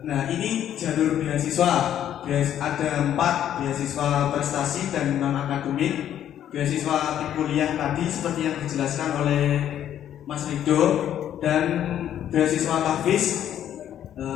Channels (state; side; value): quieter; right; 10.7 dB